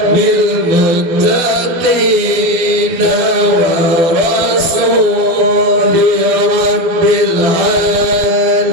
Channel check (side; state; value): left; late; 12 ms